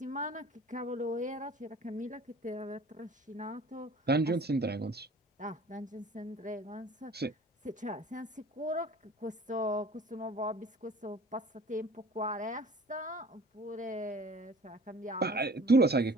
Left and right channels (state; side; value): normal; both; correlation 0.47